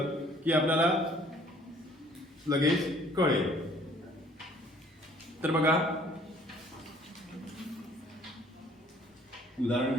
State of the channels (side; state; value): both; normal; correlation 0.57